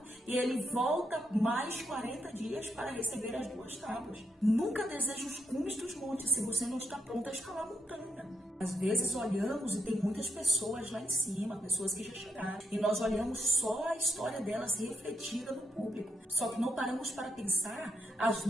e ele volta mais 40 dias para receber as 2 tábuas. Nunca deseje os cumes dos montes se você não está pronto a escalar a montanha. Às vezes olhamos e tem muitas pessoas lá em cima, pessoas que já chegaram, e nós olhamos só a história delas refletida no público. Só que não paramos para pensar as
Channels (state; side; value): normal; both; correlation 0.80